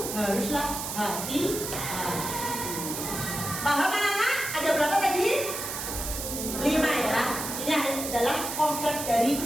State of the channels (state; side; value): noise; right; hiss, 5 dB below the sound